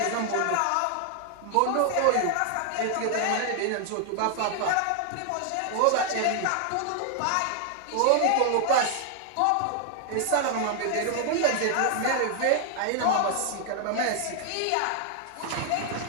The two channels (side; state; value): both; different; correlation 0.00